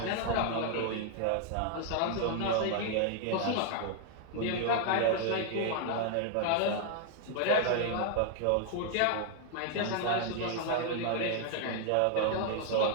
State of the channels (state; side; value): different; both; correlation 0.00